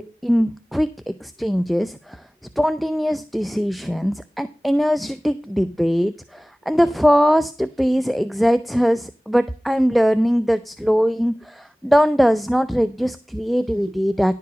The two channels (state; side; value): normal; both; correlation 0.98